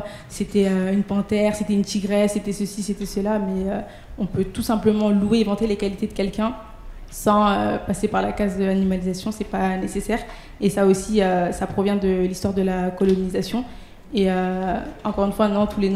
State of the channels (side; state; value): both; identical; correlation 1.00